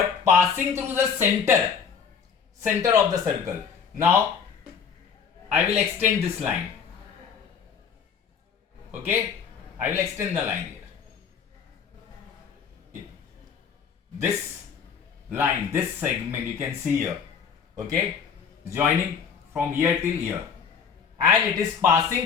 passing through the center of the circle. Now, I will extend this line. Okay, I will extend the line here. This line, this segment you can see here. Okay, joining from here till here, and it is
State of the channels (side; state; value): right; quieter; 6.7 dB